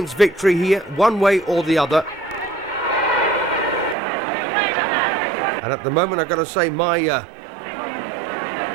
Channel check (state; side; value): drops out; left; at 4.0 s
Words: victory here, one way or the other. And at the moment, I've got to say, my